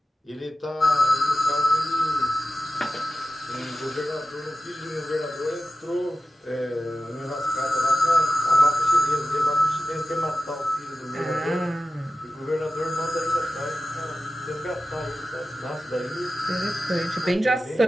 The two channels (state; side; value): normal; both; correlation 0.94